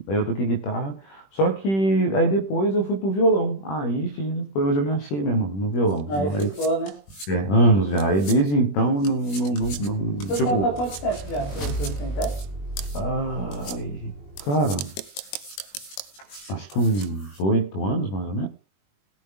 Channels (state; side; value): late; right; 21 ms